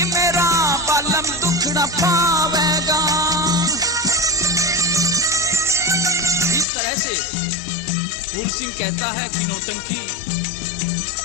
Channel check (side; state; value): right; drops out; at 6.7 s